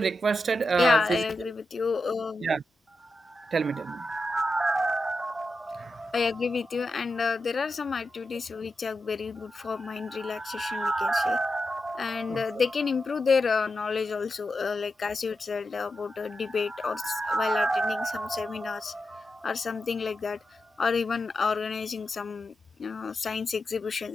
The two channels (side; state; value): both; normal; correlation 0.88